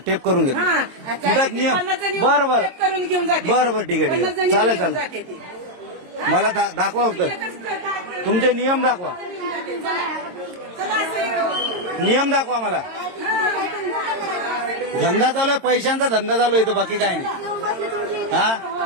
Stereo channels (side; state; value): left; late; 22 ms